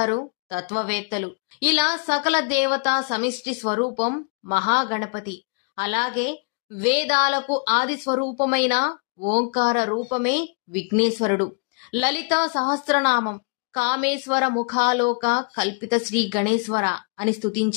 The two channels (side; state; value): right; quieter; 36.2 dB